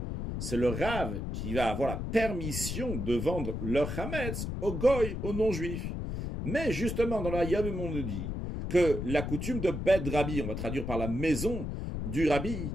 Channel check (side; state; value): left; noise; rumble, 4 dB below the sound